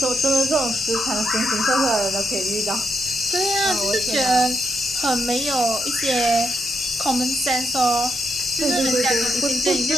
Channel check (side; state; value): both; normal; correlation 0.82